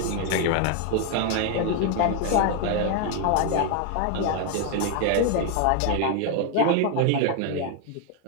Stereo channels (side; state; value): both; different; correlation 0.01